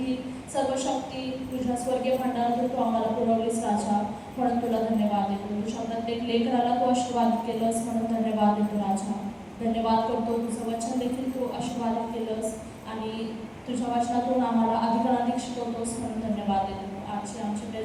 सर्व शक्ती तुझ्या स्वर्गीय भांडारातून तू आम्हाला पुरवलीस राजा, म्हणून तुला धन्यवाद देतो. तुझ्या प्रत्येक लेकराला तू आशीर्वाद केलंस म्हणून धन्यवाद देतो राजा. धन्यवाद करतो. तुझं वचन देखील तू आशीर्वादित केलंस आणि तुझ्या वचनातून आम्हाला अधिकाधिक शिकवतोस म्हणून धन्यवाद देतो. आजचे आमचे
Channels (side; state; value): both; identical; correlation 1.00